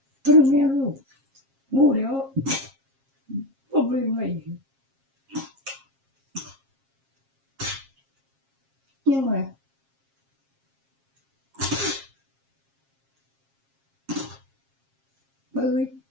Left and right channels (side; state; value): left; late; 7.4 ms